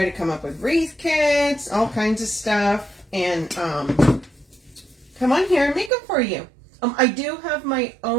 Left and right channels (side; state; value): left; drops out; at 5.9 s